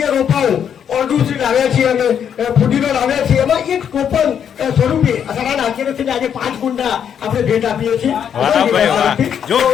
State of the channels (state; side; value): quieter; right; 8.4 dB